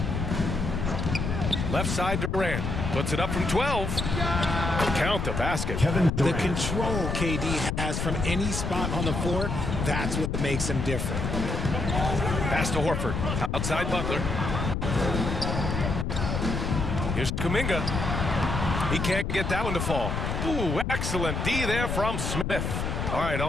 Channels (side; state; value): left; noise; rumble, 2 dB below the sound